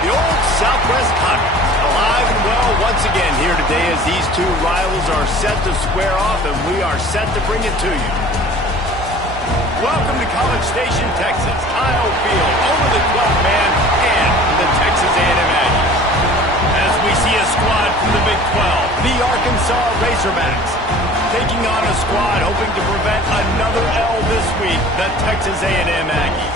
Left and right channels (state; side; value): normal; both; correlation 0.45